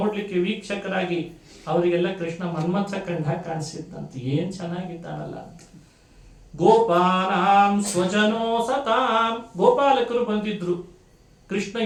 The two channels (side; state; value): both; identical; correlation 1.00